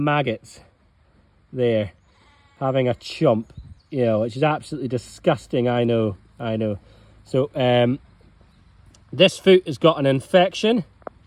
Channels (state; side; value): identical; both; correlation 1.00